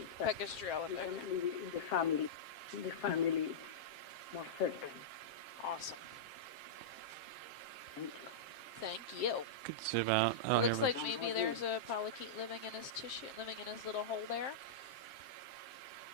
But Pacastrella, we can okay. leave it in the family. In the family, it's more certain. Awesome. Thank you. Thank you. Could zoom out. Oh, It looks here we like maybe there's a polychaete living in his tissue, living in his little hole there.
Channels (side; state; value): right; late; 7.6 ms